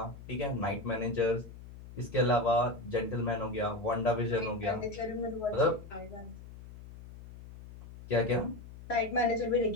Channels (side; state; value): left; noise; hum, 15 dB below the sound